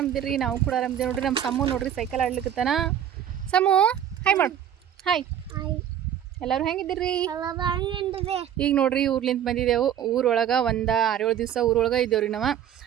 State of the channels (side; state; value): left; quieter; 9.9 dB